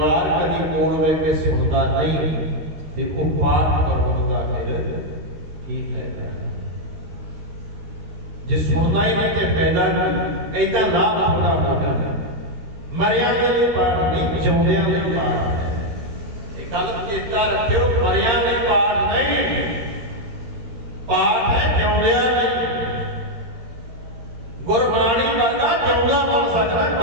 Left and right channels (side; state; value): left; late; 13 ms